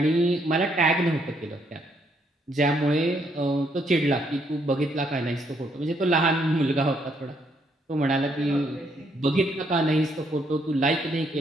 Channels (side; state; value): both; normal; correlation 0.72